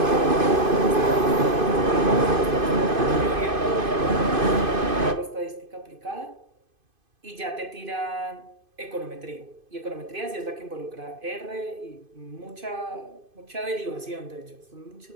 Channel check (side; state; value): left; late; 2.5 ms